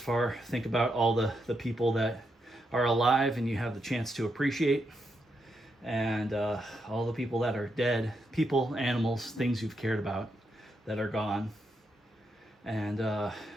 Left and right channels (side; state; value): both; normal; correlation 0.82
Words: Think about all the people that are alive and you have the chance to appreciate, and all the people that are dead, people, animals, things you've cared about that are gone. And,